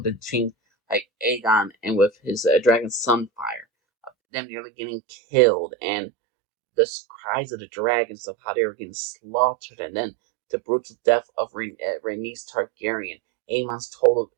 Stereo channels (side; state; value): left; drops out; at 4.1 s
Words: between like Aegon and with his dragon Sunfire, them nearly getting killed, and the cries of the dragons of how they were getting slaughtered, and then the brutal death of Rhaenys Targaryen, Aemon's total